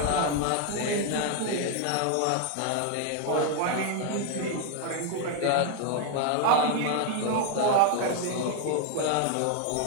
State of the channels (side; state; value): both; different; correlation 0.01